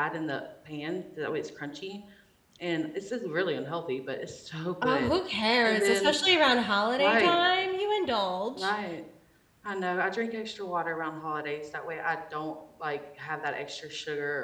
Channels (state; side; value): identical; both; correlation 1.00